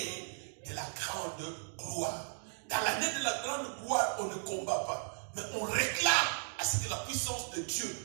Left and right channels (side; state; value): left; silent; digital silence